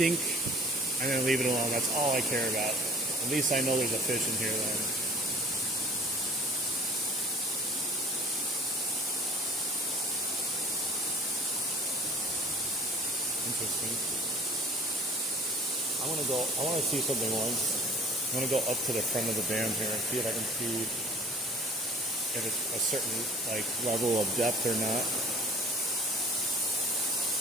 and then leave it alone. That's all I care about. At least I know there's a fish in here then. Interesting. I want to see something once. I'm going to go up to the front of the dam here and see if I can see if it's a certain like level of depth or not.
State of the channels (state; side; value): normal; both; correlation 0.47